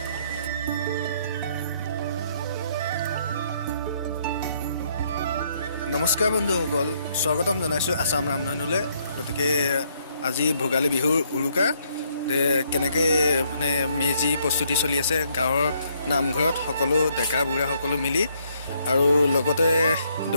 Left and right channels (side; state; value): both; inverted; correlation -0.70